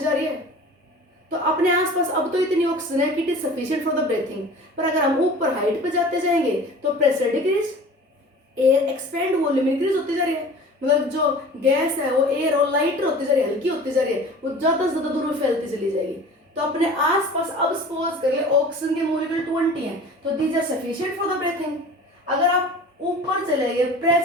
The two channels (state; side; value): normal; both; correlation 0.41